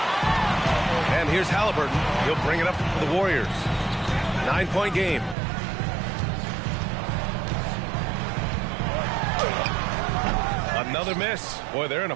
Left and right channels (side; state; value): left; drops out; at 5.4 s